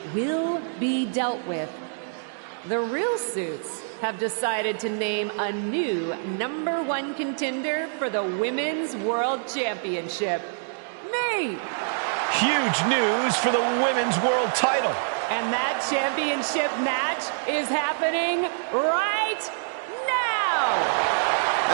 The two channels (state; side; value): silent; left; digital silence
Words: will be dealt with, the Real Suits have decided to name a new #1 contender for the Women's World Championship. Me! Huge news for the Women's World title. And that championship match is happening right now!